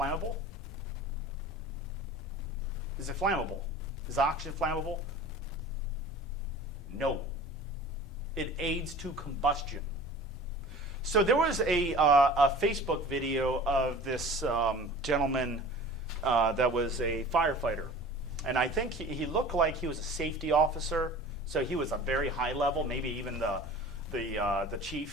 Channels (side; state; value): both; normal; correlation 0.42